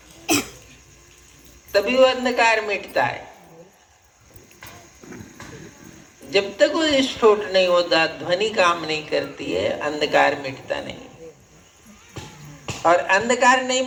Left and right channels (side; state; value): both; identical; correlation 1.00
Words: तभी वो अंधकार मिटता है। जब तक वो विस्फोट नहीं होता, ध्वनि काम नहीं करती है, अंधकार मिटता नहीं। और अंधकार नहीं